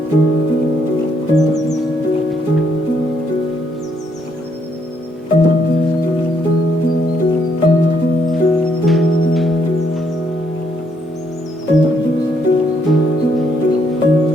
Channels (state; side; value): normal; both; correlation 0.72